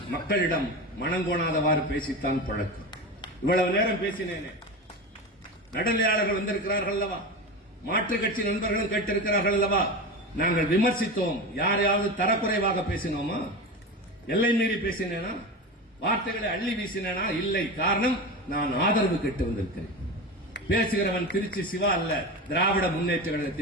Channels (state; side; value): normal; both; correlation 0.25